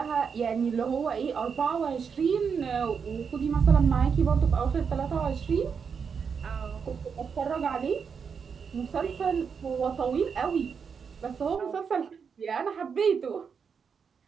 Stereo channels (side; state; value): left; quieter; 6.3 dB